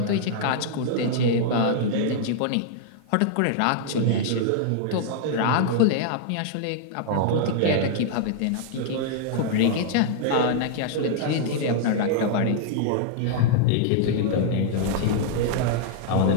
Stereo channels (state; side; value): different; both; correlation -0.01